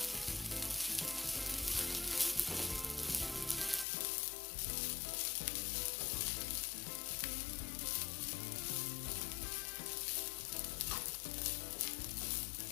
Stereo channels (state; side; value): drops out; right; at 3.9 s